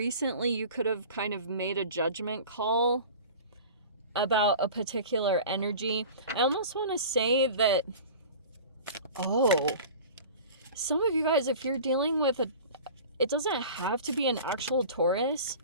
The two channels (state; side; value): inverted; both; correlation -0.39